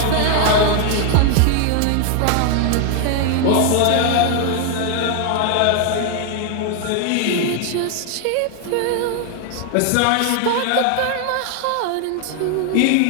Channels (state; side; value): different; both; correlation 0.00